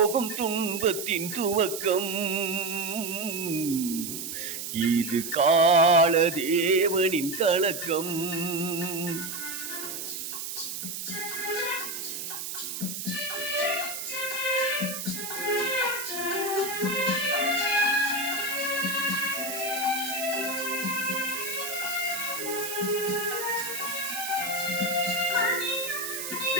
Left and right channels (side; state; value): right; noise; hiss, 6 dB below the sound